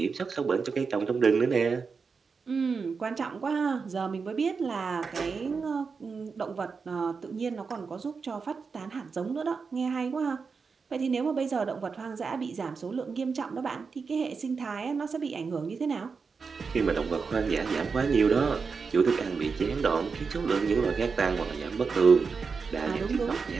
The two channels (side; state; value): left; quieter; 5.1 dB